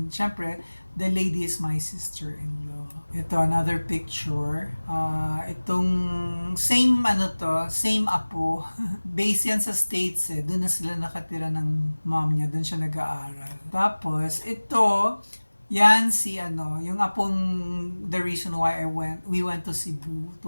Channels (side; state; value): both; inverted; correlation -1.00